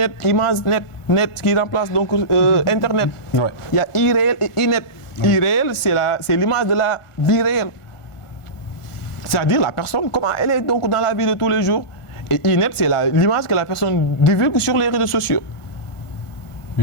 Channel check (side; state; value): right; late; 1.5 ms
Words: image net, net qui remplace donc Internet. Ouais. Il y a e-réel et e-net. E-réel, c'est l'image de la vie réelle. C'est-à-dire la personne, comment elle est donc dans la vie de tous les jours. Et e-net, c'est l'image que la personne divulgue sur les réseaux sociaux.